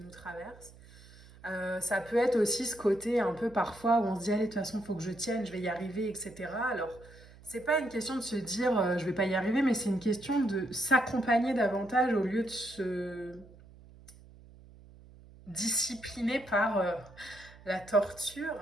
traverse. Ça peut être aussi ce côté un peu parfois où on se dit allez, de toute façon, il faut que je tienne, je vais y arriver, etc. Alors, c'est pas une question de se dire je vais pas y arriver, mais c'est une question de s'accompagner davantage au lieu de se discipliner par la torture,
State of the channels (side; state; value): right; noise; hum, 22 dB below the sound